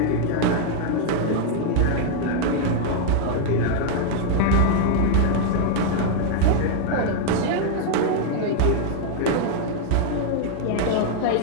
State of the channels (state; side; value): different; both; correlation 0.00